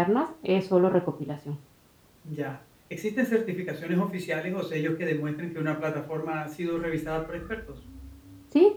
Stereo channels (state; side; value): identical; both; correlation 1.00